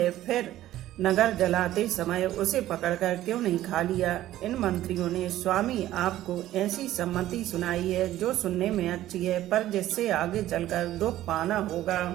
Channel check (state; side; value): quieter; left; 14.0 dB